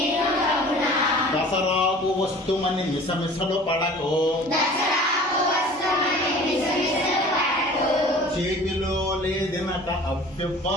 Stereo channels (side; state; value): both; normal; correlation 0.45